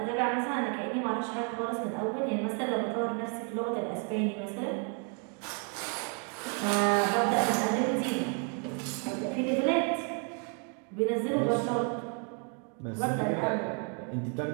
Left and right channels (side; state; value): left; quieter; 39.5 dB